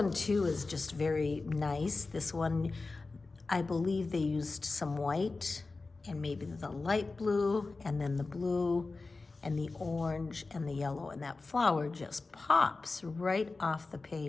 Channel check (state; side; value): quieter; right; 3.7 dB